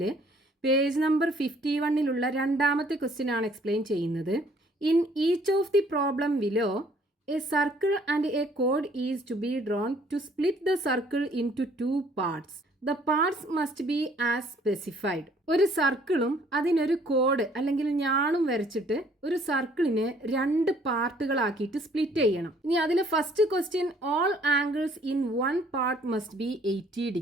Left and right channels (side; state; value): both; normal; correlation 0.60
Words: പേജ് നമ്പർ 51ലുള്ള രണ്ടാമത്തെ ക്വസ്റ്റ്യൻ ആണ് എക്സ്പ്ലെയിൻ ചെയ്യുന്നത്. In each of the problem below a circle and a കോഡ് is to be drawn to split the circle into 2 parts. The parts must be as specified. ഒരു സർക്കിളും അതിനൊരു കോഡ് അല്ലെങ്കിൽ ഞാണും വരച്ചിട്ട് ഒരു സർക്കിളിനെ 2 പാർട്ടുകളാക്കിയിട്ട് സ്പ്ലിറ്റ് ചെയ്യണം. ഇനി അതിലെ first question, all angles in 1 part must be 80